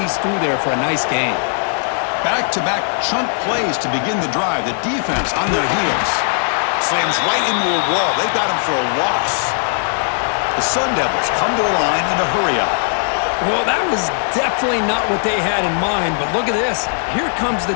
through there for a nice gain. Back-to-back chunk plays to begin the drive. The defense on their heels. Slams right into a wall. They got him for a loss. The Sun Devils come to the line in a hurry-up. Well, that was definitely not what they had in mind, but look at this. Here comes the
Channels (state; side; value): silent; right; digital silence